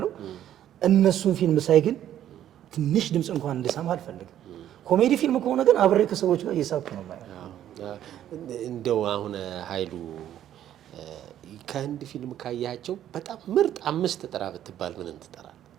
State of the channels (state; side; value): quieter; left; 11.3 dB